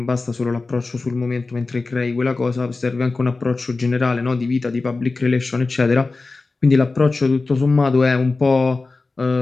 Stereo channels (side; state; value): right; quieter; 3.7 dB